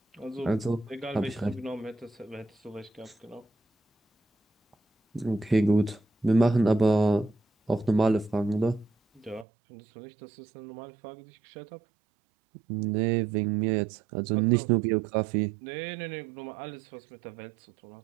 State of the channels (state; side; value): drops out; left; at 9.5 s